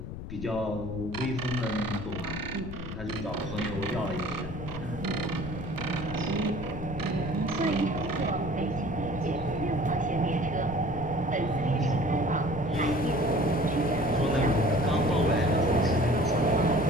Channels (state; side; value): noise; left; rumble, 8 dB below the sound